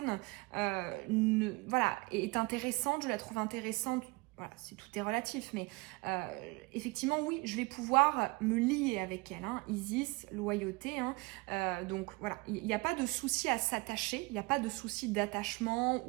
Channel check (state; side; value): quieter; left; 25.8 dB